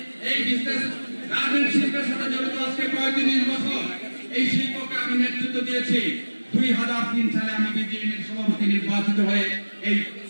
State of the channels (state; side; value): inverted; both; correlation -1.00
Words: এই বিজনেস গার্মেন্ট শিল্পের সাথে জড়িত আজকে 35 বছর। এই শিল্পকে আমি নেতৃত্ব দিয়েছি। 2003 সালে আমি বিজিএমের সভাপতি নির্বাচিত হয়ে